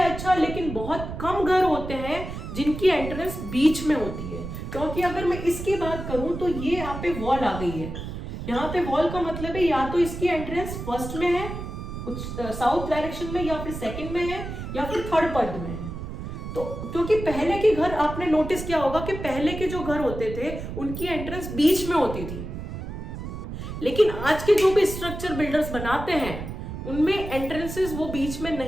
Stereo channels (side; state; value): right; noise; rumble, 8 dB below the sound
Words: अच्छा, लेकिन बहुत कम घर होते हैं जिनकी एंट्रेंस बीच में होती है। क्योंकि अगर मैं इसकी बात करूं तो ये यहाँ पे वॉल आ गई है। यहाँ पे वॉल का मतलब है या तो इसकी एंट्रेंस फर्स्ट में है, साउथ डायरेक्शन में, या फिर सेकंड में है, या फिर थर्ड पद में है। तो क्योंकि पहले के घर आपने नोटिस किया होगा कि पहले के जो घर होते थे उनकी एंट्रेंस बीच में होती थी, लेकिन आज के जो भी स्ट्रक्चर बिल्डर्स बनाते हैं उनमें एंट्रेंसेस वो बीच में